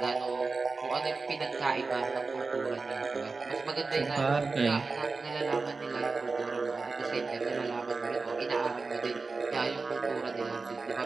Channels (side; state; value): left; quieter; 4.1 dB